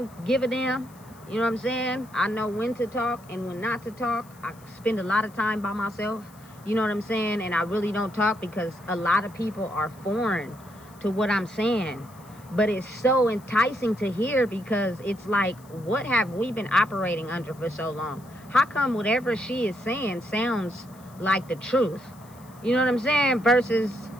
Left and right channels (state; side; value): noise; left; hiss, 26 dB below the sound